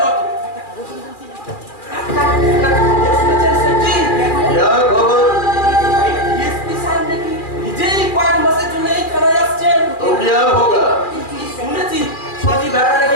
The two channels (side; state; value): right; late; 2.4 ms